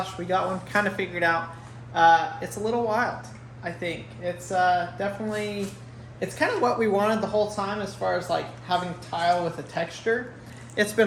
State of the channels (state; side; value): identical; both; correlation 1.00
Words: We got one kind of figured out. It's a little wild, I think. It's definitely, it's kind of what we wanted the whole time as far as like having tile with a texture. It's been